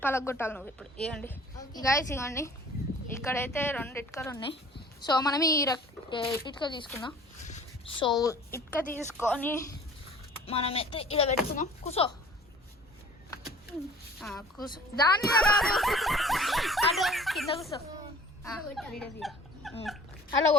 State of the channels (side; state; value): both; normal; correlation 0.49